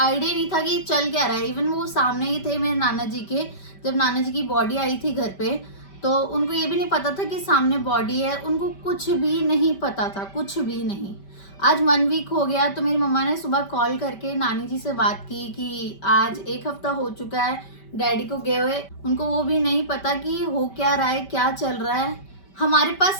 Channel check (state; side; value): late; right; 5.1 ms